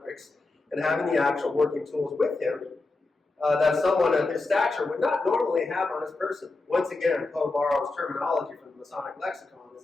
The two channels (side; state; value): right; quieter; 3.4 dB